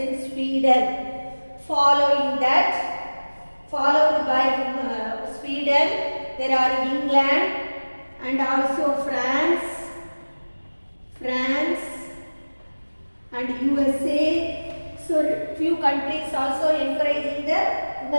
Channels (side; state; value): both; inverted; correlation -1.00